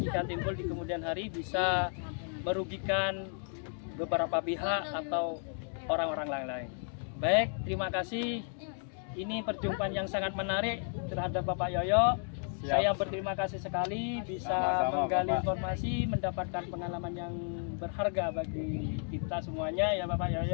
timbul di kemudian hari bisa merugikan beberapa pihak atau orang-orang lain. Baik, terima kasih. Ini perjumpaan yang sangat menarik terhadap Bapak Yoyo. Siap. Saya berterima kasih sekali bisa Sama-sama, menggali Bapak. informasi, mendapatkan pengalaman yang berharga bagi kita semuanya ya Bapak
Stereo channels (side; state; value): right; silent; 56 dB below the other